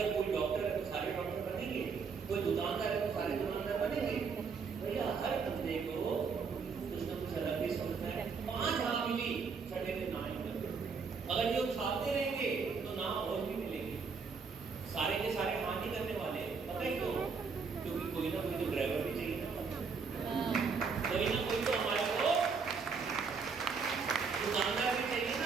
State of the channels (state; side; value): quieter; left; 5.3 dB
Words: कोई डॉक्टर है तो सारे डॉक्टर बनेंगे। कोई दुकानदार है तो सारे दुकानदार बनेंगे। भैया हर बंदे को कुछ ना कुछ अलग ही सोचना है। 5 हाँ मिली, छठे दिन ना मिले। अगर ये उछालते रहेंगे तो ना और भी मिलेंगे। सारे के सारे हाँ नहीं करने वाले, पता है क्यों? क्योंकि कोई ना कोई तो ड्राइवर भी चाहिए ना, कोई ना कोई तो हमारे को दुकानदार भी चाहिए